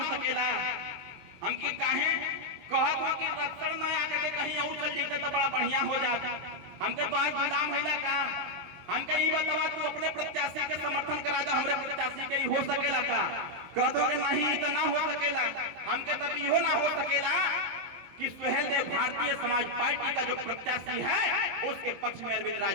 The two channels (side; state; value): left; late; 23 ms